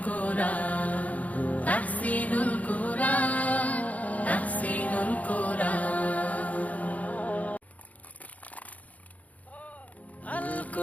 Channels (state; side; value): late; right; 0.072 ms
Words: কুরআন, তাহসিনুল কুরআন, তাহসিনুল কুরআন। আল